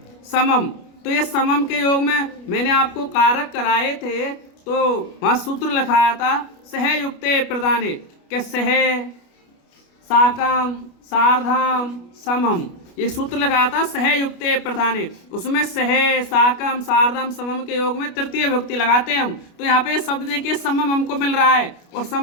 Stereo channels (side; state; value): right; late; 29 ms